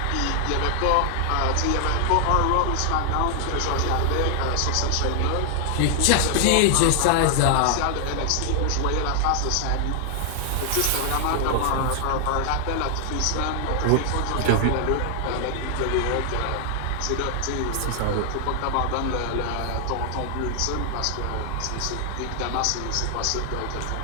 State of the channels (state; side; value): different; both; correlation 0.00